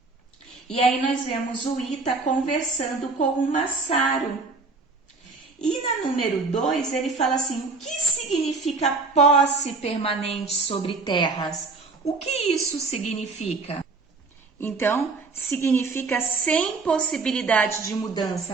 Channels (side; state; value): left; quieter; 4.0 dB